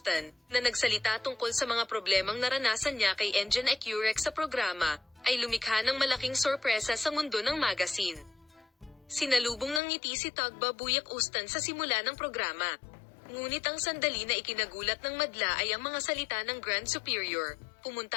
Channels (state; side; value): drops out; right; at 9.8 s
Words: na nagsalita tungkol sa mga problemang naranasan niya kay Engin Ekurek sa programa, ay lumikha ng malaking sorpresa sa mundo ng magazine. Sinalubong ng ngiti si Tugba Büyük Ustan sa simula ng programa. Ngunit ang sandali na ikinagulat ng madla ay ang mga salita ng Grand Superior,